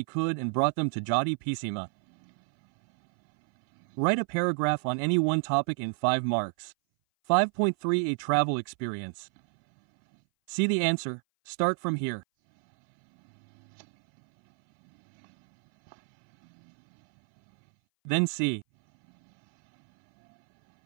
could and brought them to Judy Pisima. Write a paragraph on any one topic in 5 marks. 5.3 A travel experience. See the answer. Start from here. Then see.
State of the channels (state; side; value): silent; left; 59 dB below the other